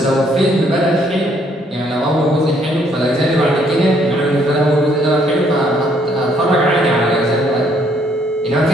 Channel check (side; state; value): both; normal; correlation 0.67